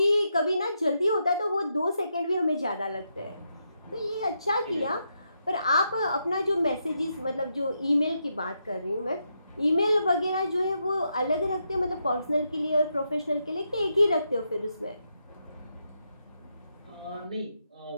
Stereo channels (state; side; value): inverted; both; correlation -0.82